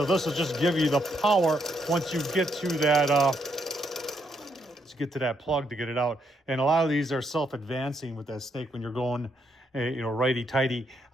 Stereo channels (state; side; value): normal; both; correlation 0.75